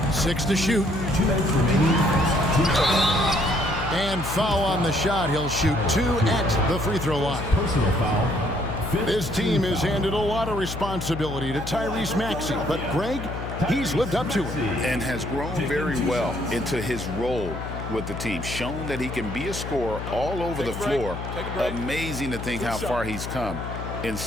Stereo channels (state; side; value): noise; left; hum, 7 dB below the sound